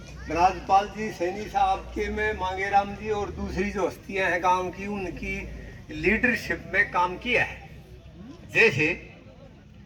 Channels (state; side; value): identical; both; correlation 1.00